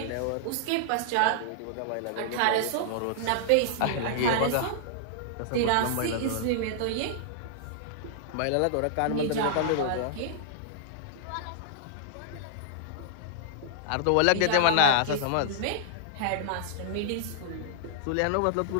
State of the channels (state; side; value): different; both; correlation -0.01